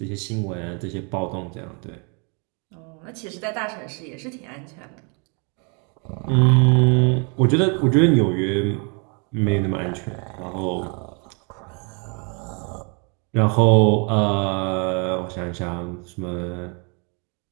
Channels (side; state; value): left; quieter; 35.5 dB